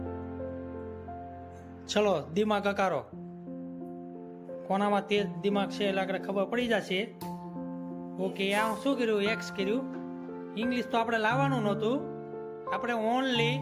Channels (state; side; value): identical; both; correlation 1.00